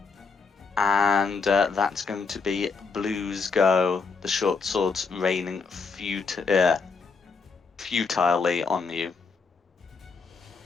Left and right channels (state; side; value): quieter; right; 4.8 dB